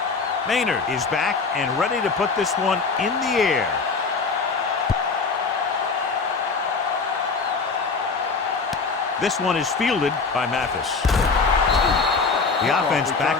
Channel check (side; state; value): right; quieter; 4.6 dB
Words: Maynard is back and ready to put this one in the air. This one is fielded by Mathis. The offense